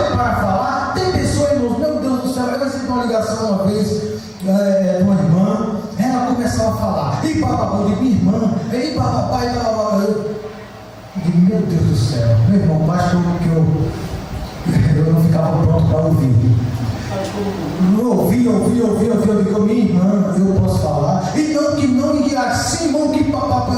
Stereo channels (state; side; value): identical; both; correlation 1.00